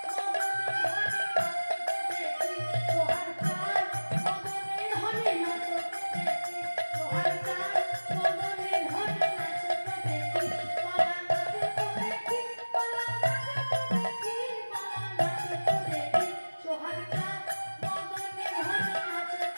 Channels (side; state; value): both; inverted; correlation -1.00